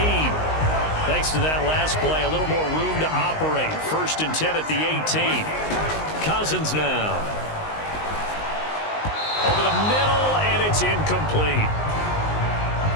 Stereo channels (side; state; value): right; late; 19 ms